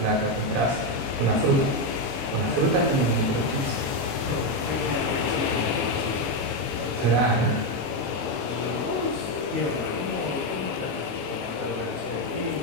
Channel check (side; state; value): left; late; 22 ms